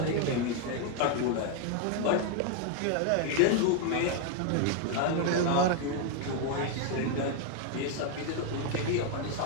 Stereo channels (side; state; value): both; different; correlation 0.01